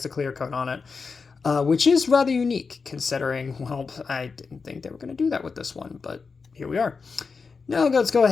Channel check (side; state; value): right; quieter; 4.9 dB